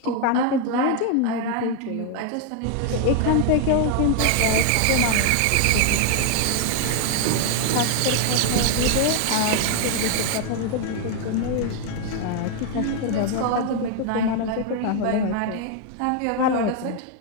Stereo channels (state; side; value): different; both; correlation 0.00